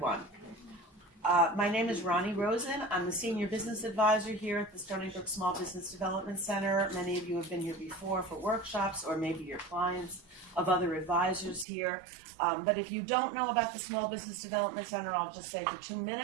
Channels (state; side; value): drops out; left; at 11.7 s